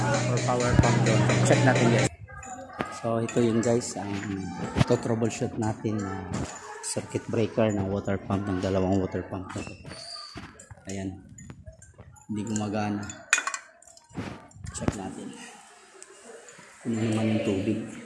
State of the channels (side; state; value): both; identical; correlation 1.00